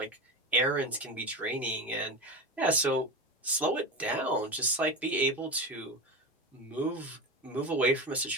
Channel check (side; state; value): both; normal; correlation 0.23